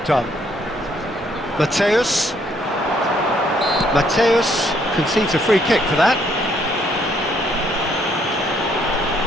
done. Mateus. Mateus concedes a free kick for that.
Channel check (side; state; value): both; normal; correlation 0.68